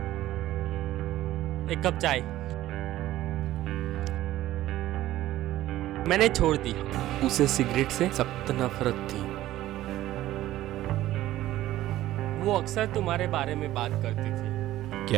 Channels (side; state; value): left; quieter; 14.7 dB